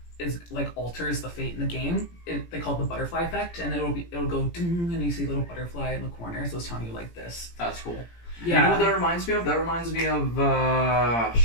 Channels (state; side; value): late; right; 17 ms